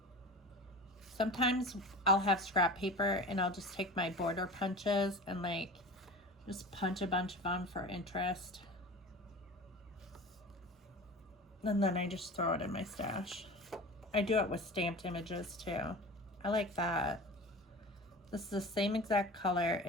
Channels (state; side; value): normal; both; correlation 0.35